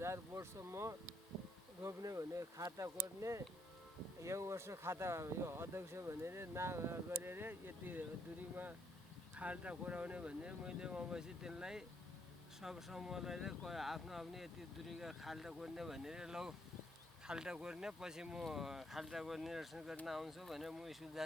बोटसम्म रोप्ने भने खाता कोर्ने यो वर्ष खाता यो अध्यक्ष भनेर गरेर यति दुरीमा खाल्टा कोराउने भने मैले वहाँपछि त्यसलाई सब समूहलाई आफ्नो यति दुरीका खाल्टा कोर्ने भनेर लौ खाल्टा कोर्ने पछि म खाल्टा कोर्ने निरीक्षण गर्न आउँछु भनेर म स्कुल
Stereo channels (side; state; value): both; normal; correlation 0.72